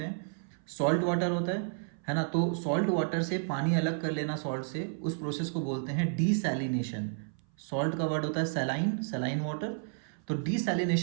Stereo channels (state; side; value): silent; left; 56 dB below the other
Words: हैं। सॉल्ट वाटर होता है ना, तो सॉल्ट वाटर से पानी अलग कर लेना सॉल्ट से, उस प्रोसेस को बोलते हैं डीसैलिनेशन। सॉल्ट का वर्ड होता है सैलाइन, सैलाइन वाटर। तो